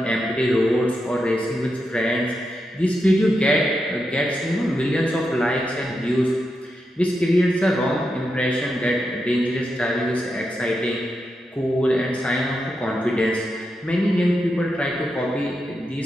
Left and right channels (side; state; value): both; normal; correlation 0.86